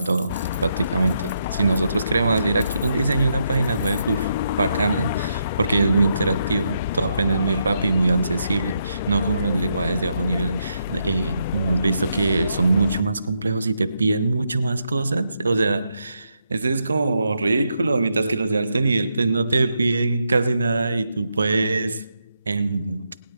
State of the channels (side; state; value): both; inverted; correlation -0.80